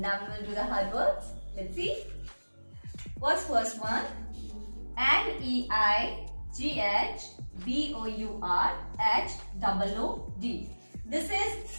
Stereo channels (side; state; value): both; inverted; correlation -1.00